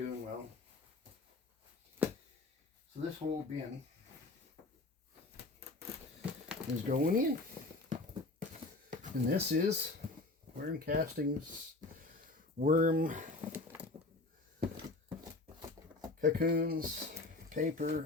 well. So this whole bin is going in. And this is Worm Castings worm cocoons,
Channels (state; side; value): quieter; right; 3.1 dB